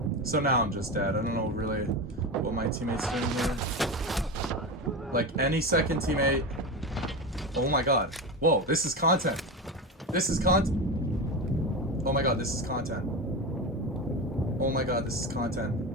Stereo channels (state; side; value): normal; both; correlation 0.21